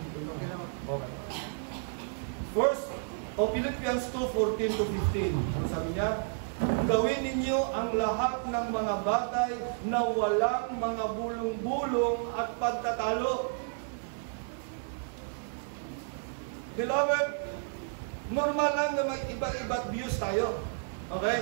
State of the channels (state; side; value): silent; left; digital silence